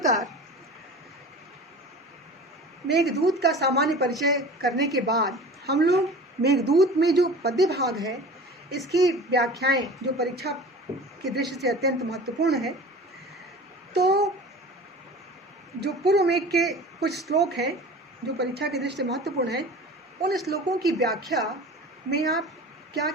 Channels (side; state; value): both; normal; correlation 0.38